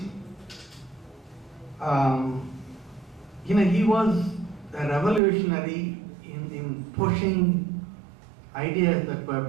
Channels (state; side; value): drops out; left; at 5.2 s